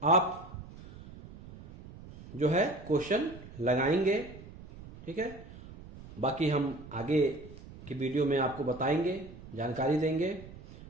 आप जो है क्वेश्चन लगाएंगे। ठीक है, बाकी हम आगे की वीडियो में आपको बताएंगे, जानकारी देंगे।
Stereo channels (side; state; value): right; noise; rumble, 17 dB below the sound